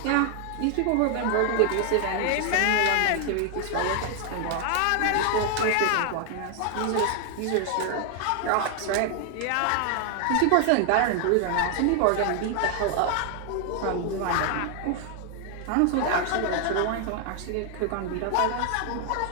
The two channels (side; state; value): both; different; correlation 0.00